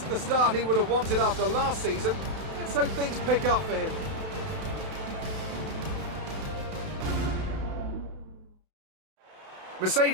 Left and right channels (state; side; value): late; left; 32 ms